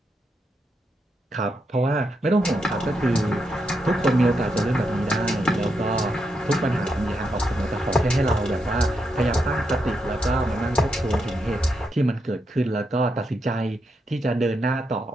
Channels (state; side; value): normal; both; correlation 0.82